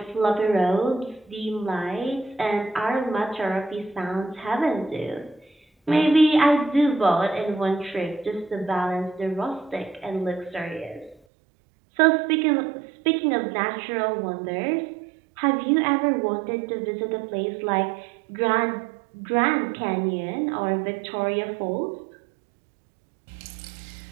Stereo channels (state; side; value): drops out; left; at 11.2 s